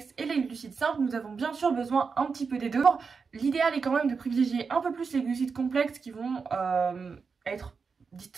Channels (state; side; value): quieter; left; 5.2 dB